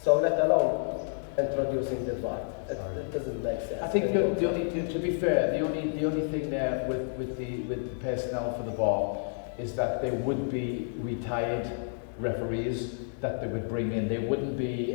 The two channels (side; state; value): right; silent; digital silence